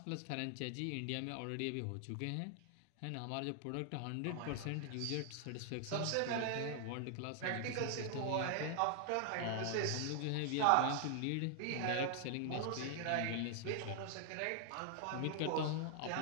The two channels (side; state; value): both; different; correlation 0.00